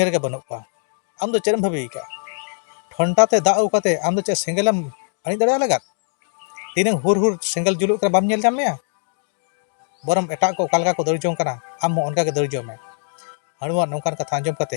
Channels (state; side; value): silent; right; digital silence